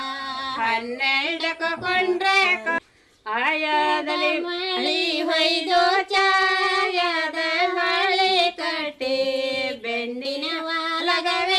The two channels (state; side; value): identical; both; correlation 1.00